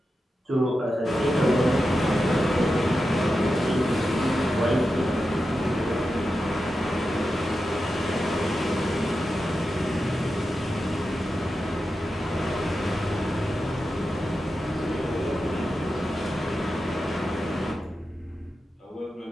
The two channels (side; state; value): both; normal; correlation 0.90